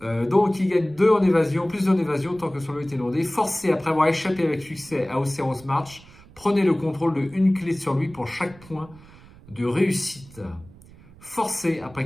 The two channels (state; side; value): noise; right; rumble, 22 dB below the sound